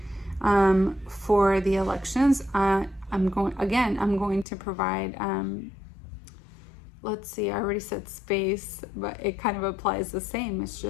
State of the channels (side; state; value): right; drops out; at 4.5 s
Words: For the elections, I'm going to provide let's see, I already said space, but it kind of applies the same. It's